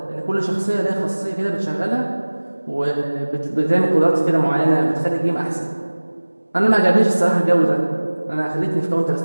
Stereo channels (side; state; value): both; inverted; correlation -1.00